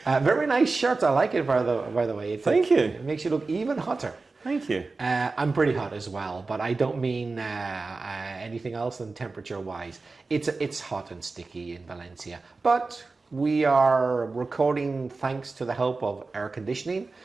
Very nice shirt. I like it, by the way. Thank you. It makes you look even hotter. Thank you. I'm pretty hot as well, but I don't mean anything else than temperature-wise. It's hot and sticky in Valencia, but we are recording thanks to the help of air conditioning.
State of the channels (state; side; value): quieter; left; 3.8 dB